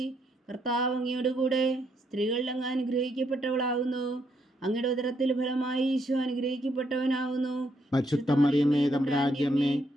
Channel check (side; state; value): both; normal; correlation 0.75